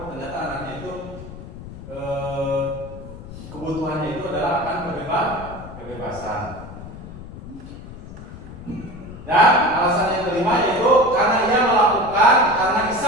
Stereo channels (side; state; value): left; noise; rumble, 14 dB below the sound